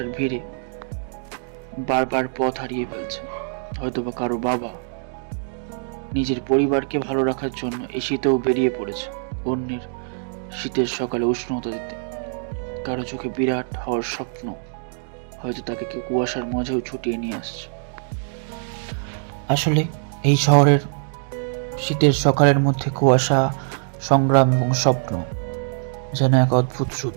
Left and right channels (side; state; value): left; silent; digital silence